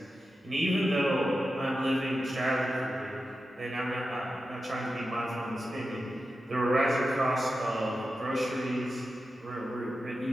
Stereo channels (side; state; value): both; normal; correlation 0.91